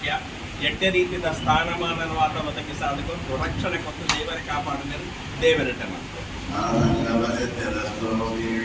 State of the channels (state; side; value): identical; both; correlation 1.00